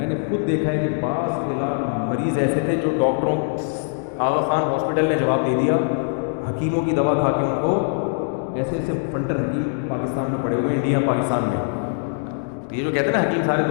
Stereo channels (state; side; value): silent; right; digital silence